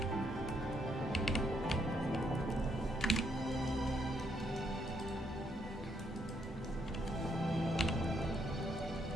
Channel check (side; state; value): both; normal; correlation 0.74